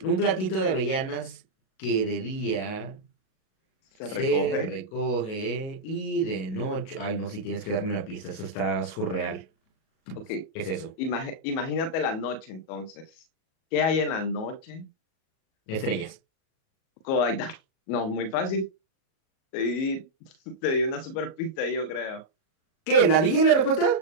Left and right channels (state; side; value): late; right; 37 ms